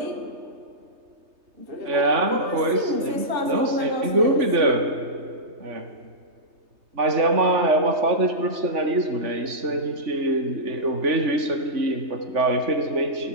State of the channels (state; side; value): late; left; 3.3 ms